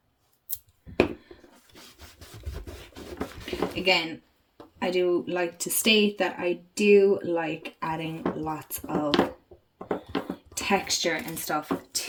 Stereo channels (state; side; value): identical; both; correlation 1.00